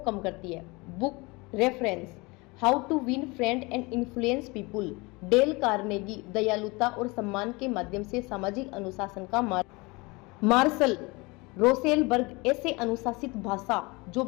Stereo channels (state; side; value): quieter; right; 25.3 dB